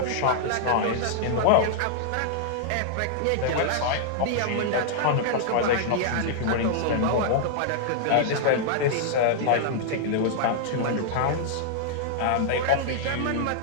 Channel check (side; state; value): both; different; correlation -0.01